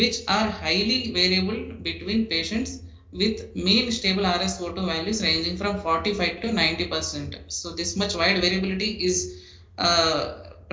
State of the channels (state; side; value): identical; both; correlation 1.00